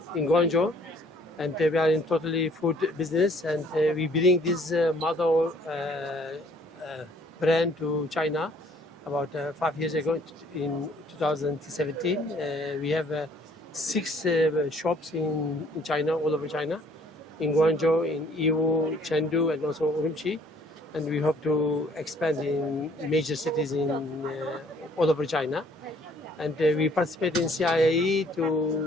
Guangzhou. And we are in totally food business. And we bring this model brand to China about 5 years ago in 2017. We have 6 shops in China, all over China, in Guangzhou, in Yiwu, Chengdu, and also Urumqi. And we hope to expand in major cities in all over China. And we participate in CIIE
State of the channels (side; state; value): both; normal; correlation 0.60